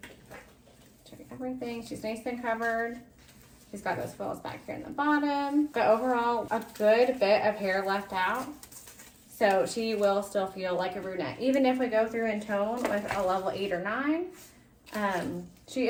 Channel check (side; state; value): both; identical; correlation 1.00